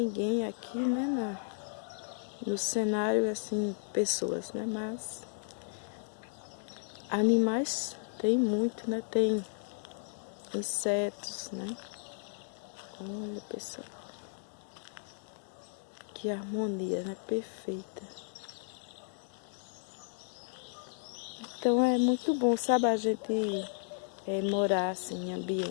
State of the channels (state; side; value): silent; right; digital silence